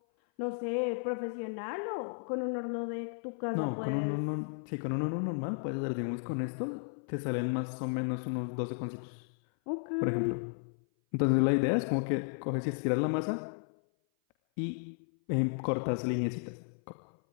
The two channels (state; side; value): silent; right; 55 dB below the other